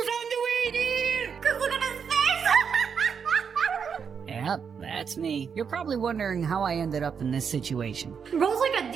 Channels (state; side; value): quieter; left; 6.6 dB